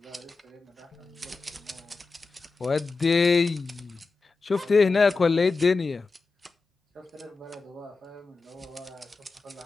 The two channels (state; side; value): quieter; right; 4.1 dB